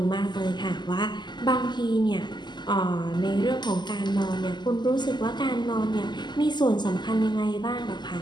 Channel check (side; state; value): right; late; 0.21 ms